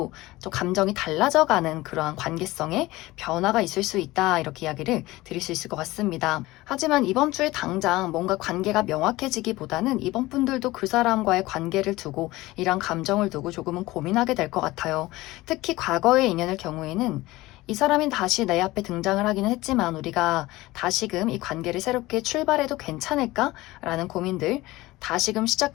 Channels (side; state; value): right; quieter; 19.0 dB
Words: 좀 감정이 달라져가는 그러한 관계성의 변화가 있을 수 있다, 이렇게 이야기를 드릴 수 있을 것 같습니다. 하지만 이번 주에 당장 뭔가 관계가 명확해지기보다는 이번 분들도 그 사람과의 관계를 두고 이런 감정을 두고 조금은 고민하게 될 것 같아요. 특히 과거의 인연의 경우에는 이 사람이 다시 내 앞에 등장을 하기는 했지만 우리가 다시금 이 관계를 새롭게 출발해도 괜찮을까라는 고민들, 다시금